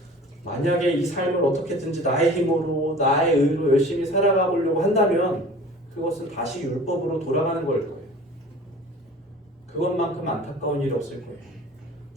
만약에 이 삶을 어떻게든지 나의 힘으로, 나의 의로 열심히 살아가 보려고 한다면 그것은 다시 율법으로 돌아가는 걸 거예요. 그것만큼 안타까운 일이 없을 거예요.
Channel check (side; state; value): both; normal; correlation 0.43